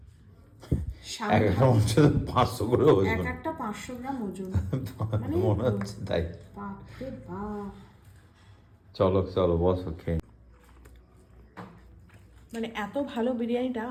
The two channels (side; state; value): both; identical; correlation 1.00